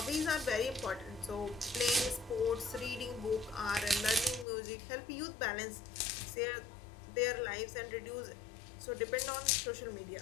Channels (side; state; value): right; drops out; at 4.5 s